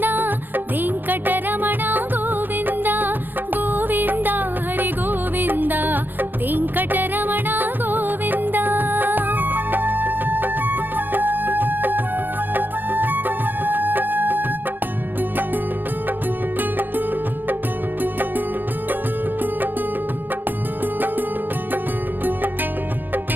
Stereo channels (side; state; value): left; late; 0.091 ms